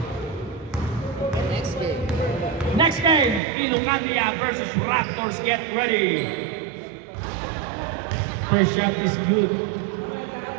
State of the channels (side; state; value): left; drops out; at 3.4 s